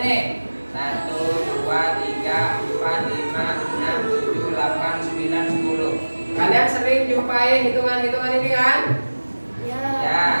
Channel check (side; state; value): both; inverted; correlation -1.00